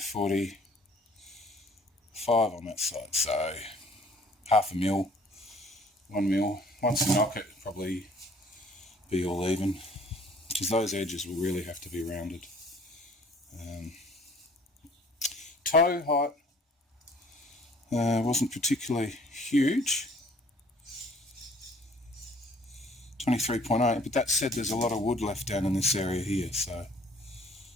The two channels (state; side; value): normal; both; correlation 0.56